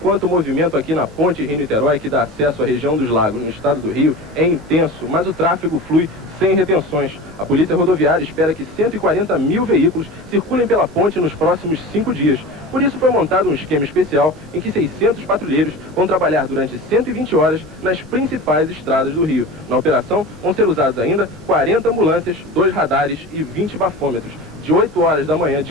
o movimento aqui na ponte Rio-Niterói, que dá acesso à região dos lagos no estado do Rio, é intenso, mas o tráfego flui sem retenções. A Polícia Rodoviária espera que 140 mil veículos circulem pela ponte nos próximos 5 dias. Por isso foi montado um esquema especial em que 600 patrulheiros vão trabalhar durante 120 horas nas principais estradas do Rio. Na operação vão ser usados ainda 40 ambulâncias, 2 radares e 20 bafômetros. De 8 horas da manhã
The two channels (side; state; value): both; normal; correlation 0.32